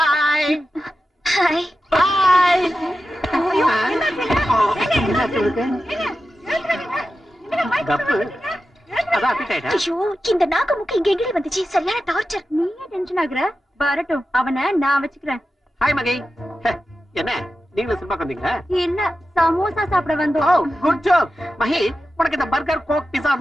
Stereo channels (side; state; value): both; normal; correlation 0.92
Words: கப்பு அதான் appetite ஆ? ஐயோ இந்த நாக்கு முக்கு இங்க எங்கடி வந்துச்சு சரியான டார்ச்சர் நீயே டென்ஷன் ஆகுற வரட்டும் அவனை நான் வச்சுக்கிறேன் ஹாய் மகி ஹே, என்ன நீங்களும் சினிமாக்கு வந்தீங்களா இல்ல சமோசா சாப்பிட ஓ வந்தோம் குட் ஜாப் மகி உனக்கு இந்த பர்கர் கோக் பிஸா